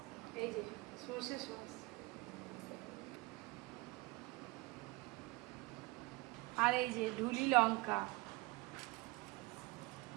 এই যে সর্ষে সস, আর এই যে ঢুলি লঙ্কা,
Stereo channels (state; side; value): quieter; left; 22.4 dB